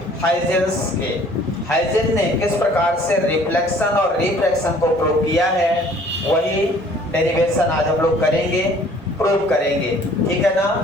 हाइजेंस के। हाइजेंस ने किस प्रकार से रिफ्लेक्शन और रिफ्रैक्शन को प्रूव किया है, वही डेरिवेशन आज हम लोग करेंगे, प्रूव करेंगे। ठीक है ना?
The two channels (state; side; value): normal; both; correlation 0.55